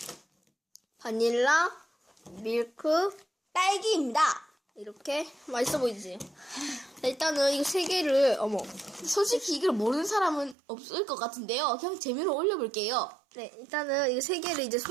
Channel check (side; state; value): left; drops out; at 10.6 s